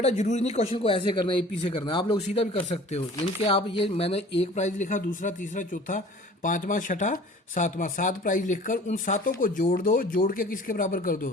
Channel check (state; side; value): normal; both; correlation 0.47